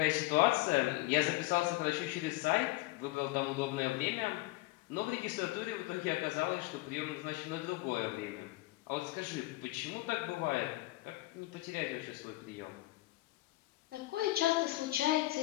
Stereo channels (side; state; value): right; quieter; 19.1 dB